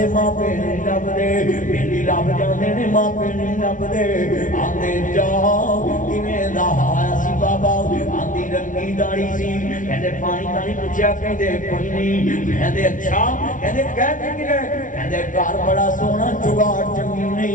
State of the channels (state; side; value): late; right; 0.38 ms